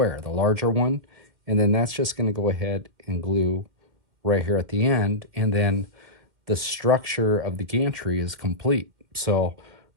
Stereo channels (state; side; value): late; left; 2.1 ms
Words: the larger one, and then that's just going to go ahead and glue right here at the end, and then the structure of the gantry is complete. So